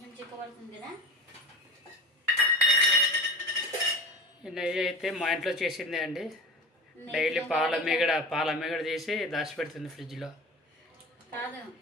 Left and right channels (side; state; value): both; normal; correlation 0.32